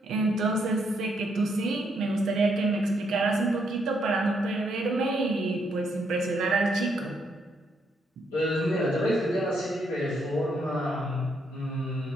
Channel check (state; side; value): normal; both; correlation 0.75